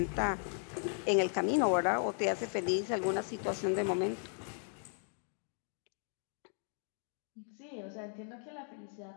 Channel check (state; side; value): silent; right; 53 dB below the other